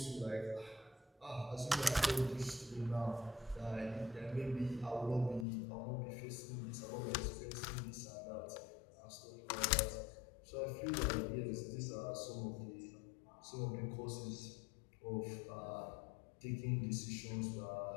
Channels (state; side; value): drops out; right; at 5.5 s